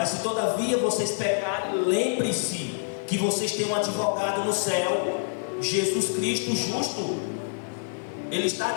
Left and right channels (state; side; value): silent; right; digital silence